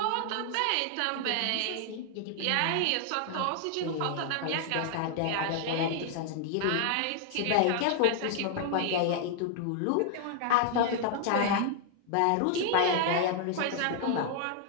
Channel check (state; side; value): different; both; correlation 0.00